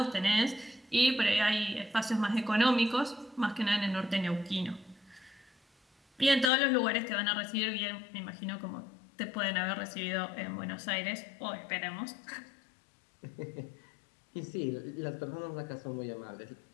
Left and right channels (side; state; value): right; drops out; at 6.5 s